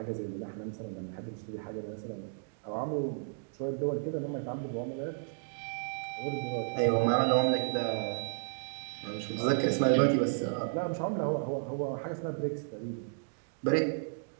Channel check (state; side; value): silent; left; digital silence